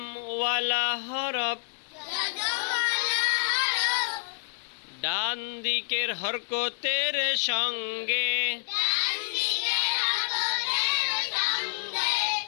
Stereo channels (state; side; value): silent; right; digital silence